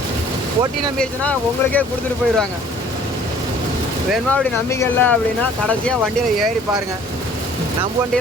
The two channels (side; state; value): both; normal; correlation 0.54